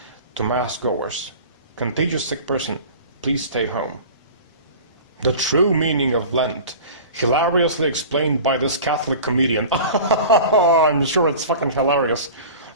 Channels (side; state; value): both; inverted; correlation -0.38